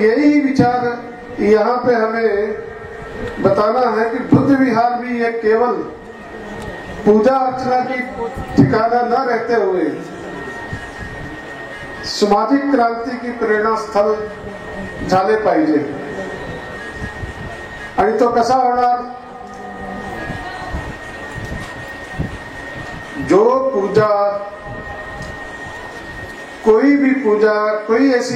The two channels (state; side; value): identical; both; correlation 1.00